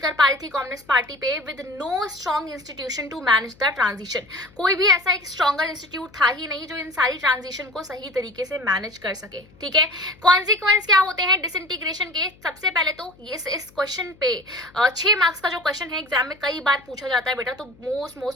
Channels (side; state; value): left; noise; hum, 27 dB below the sound